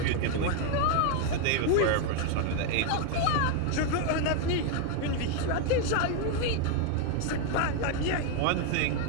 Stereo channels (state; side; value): different; both; correlation 0.01